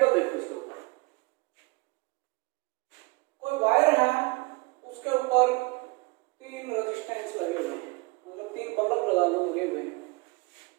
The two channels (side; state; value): left; quieter; 26.3 dB